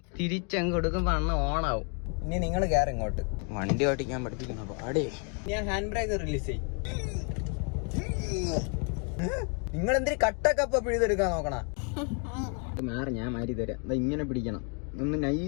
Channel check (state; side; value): quieter; right; 38.6 dB